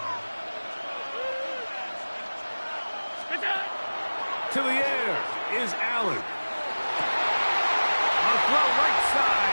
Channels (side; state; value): both; inverted; correlation -1.00